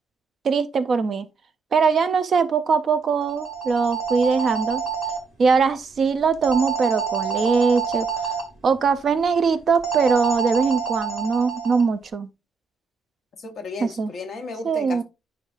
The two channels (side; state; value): left; quieter; 4.9 dB